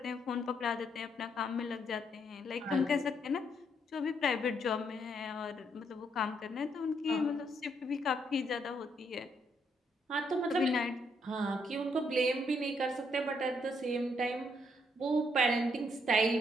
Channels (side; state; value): both; normal; correlation 0.74